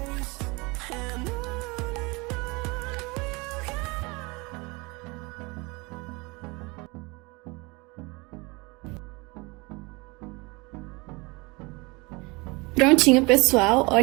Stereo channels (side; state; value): left; quieter; 26.3 dB